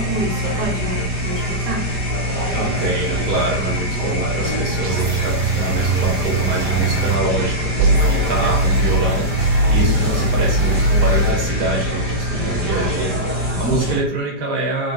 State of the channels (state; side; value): late; left; 4.9 ms